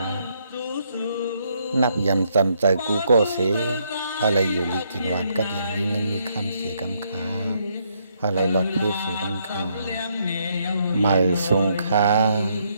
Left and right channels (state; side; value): inverted; both; correlation -0.73